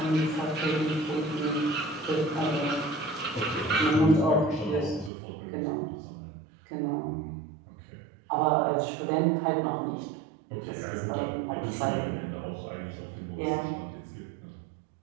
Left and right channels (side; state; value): left; drops out; at 5.1 s